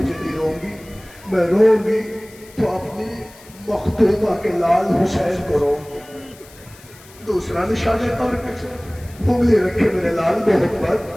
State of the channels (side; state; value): left; noise; hiss, 23 dB below the sound